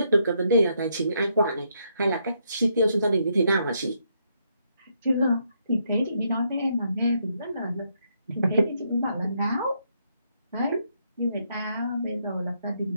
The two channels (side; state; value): both; inverted; correlation -0.76